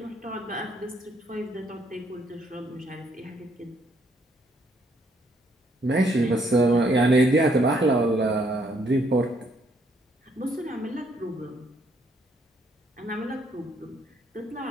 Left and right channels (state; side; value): normal; both; correlation 0.69